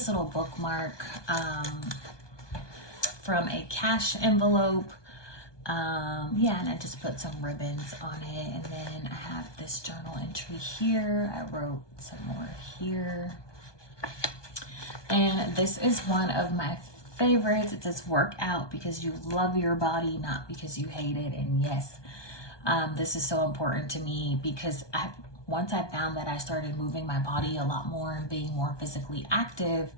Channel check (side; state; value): right; late; 1.2 ms